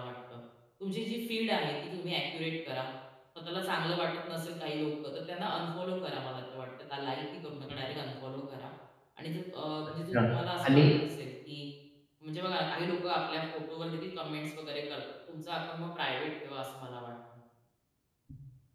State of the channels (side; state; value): both; identical; correlation 1.00